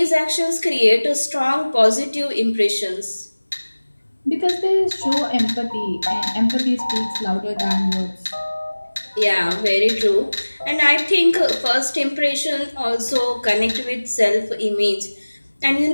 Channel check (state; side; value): inverted; both; correlation -1.00